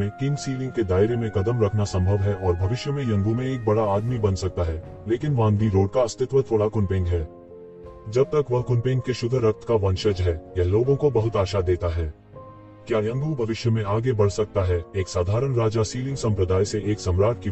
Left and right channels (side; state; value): both; identical; correlation 1.00